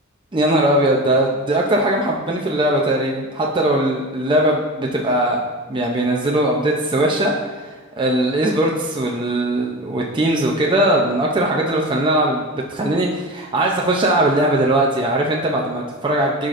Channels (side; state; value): both; normal; correlation 0.29